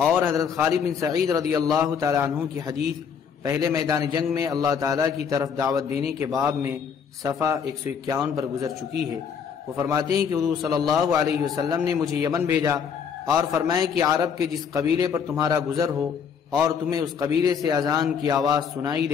حضرت خالد بن سعید رضی اللہ تعالیٰ عنہ کی حدیث پہلے میدان جنگ میں اللہ تعالیٰ کی طرف دعوت دینے کے باب میں صفحہ 151 پر گزر چکی ہے۔ وہ فرماتے ہیں کہ حضور صلی اللہ علیہ وسلم نے مجھے یمن بھیجا اور فرمایا کہ عرب کے جس قبیلے پر تمہارا گزر ہو اور تمہیں اس قبیلے سے اذان کی آواز سنائی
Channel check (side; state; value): right; quieter; 6.9 dB